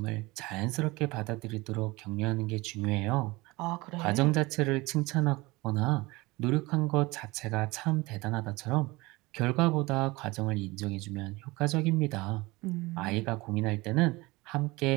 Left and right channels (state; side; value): quieter; left; 22.4 dB